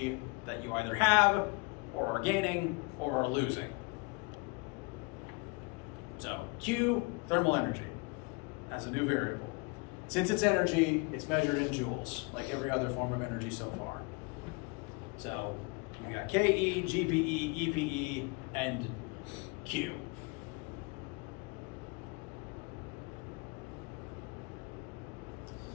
that you either have or are gaining or are losing. So Q, thermal energy, as a new variable. Since it's energy, it's measured in joules, like every other form of energy so far. So you got KE, GPE, EPE, and Q.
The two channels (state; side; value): quieter; right; 29.8 dB